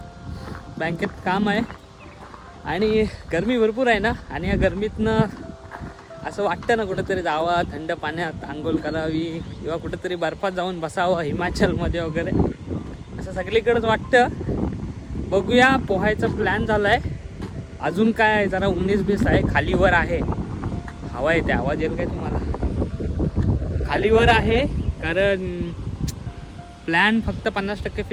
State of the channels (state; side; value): identical; both; correlation 1.00